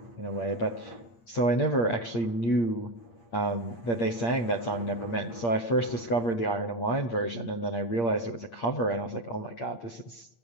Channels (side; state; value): right; late; 8.6 ms